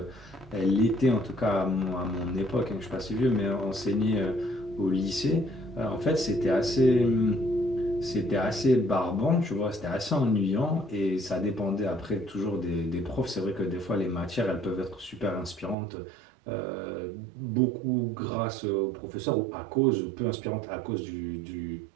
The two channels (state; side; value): drops out; left; at 15.8 s